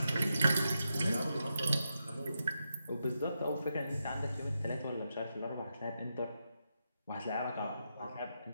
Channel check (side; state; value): both; inverted; correlation -0.86